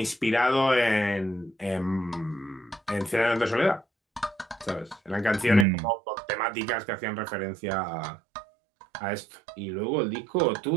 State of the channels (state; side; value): drops out; left; at 5.7 s